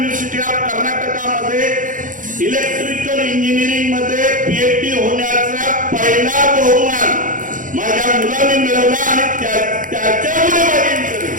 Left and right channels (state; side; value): late; left; 0.38 ms